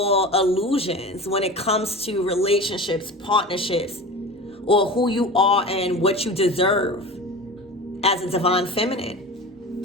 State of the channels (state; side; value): normal; both; correlation 0.33